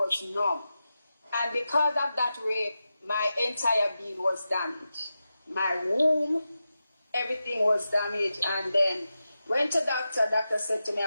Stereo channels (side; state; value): both; inverted; correlation -0.91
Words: numb. And because of that rape, my entire being was damaged. My womb, everything was damaged. And then went to doctor. Doctor said to me I